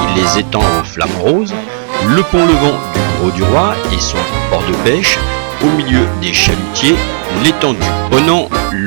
les étangs aux flamants roses, le pont levant du Gros du Roi et son port de pêche, au milieu des chalutiers, l'étang du Ponant,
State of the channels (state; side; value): silent; left; 59 dB below the other